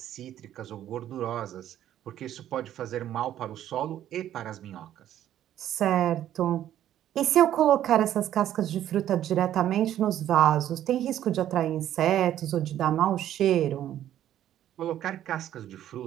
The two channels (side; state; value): left; quieter; 11.6 dB